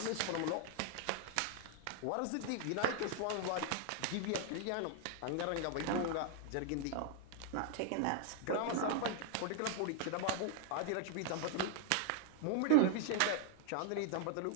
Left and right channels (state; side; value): different; both; correlation 0.00